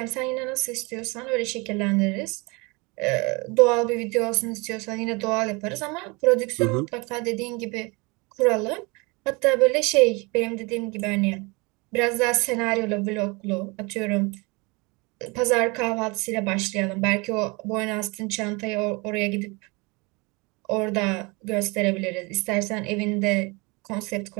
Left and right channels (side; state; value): left; quieter; 27.3 dB